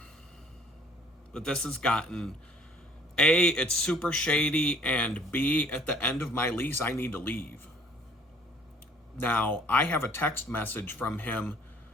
this has gotten, A, it's super shady, and B, at the end of my lease, I need to leave. Now, I have a text message from him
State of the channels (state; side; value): normal; both; correlation 0.56